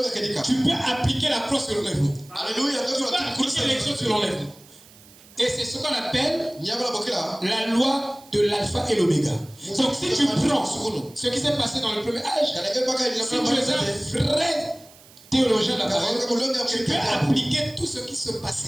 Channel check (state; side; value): noise; right; hiss, 24 dB below the sound